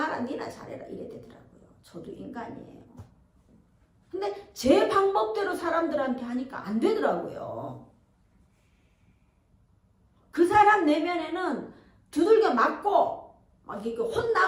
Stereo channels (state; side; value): identical; both; correlation 1.00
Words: 니나 잘해라 이래 되더라고요. 저도 인간이에요. 근데 제 방법대로 사람들한테 하니까 안 되더라고요. 그 사람 내면에는 두들겨 맞고 막 이렇게